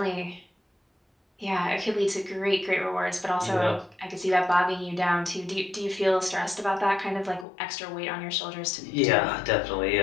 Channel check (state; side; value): drops out; right; at 7.5 s